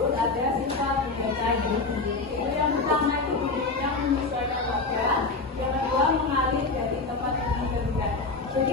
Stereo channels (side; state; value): right; quieter; 3.7 dB